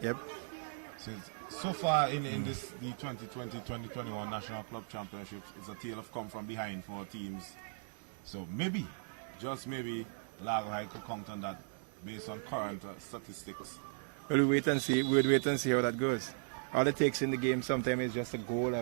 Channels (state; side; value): silent; left; digital silence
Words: Yep. So far in this the 2020-2021 National Club Championships, it's a tale of come from behind for teams. So maybe, just maybe, Largo Heights could count on that based on current statistics. Well, we'll wait and see how that goes. All it takes in the game sometimes is just a goal,